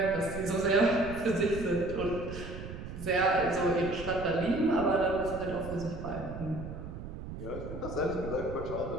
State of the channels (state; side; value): noise; right; rumble, 9 dB below the sound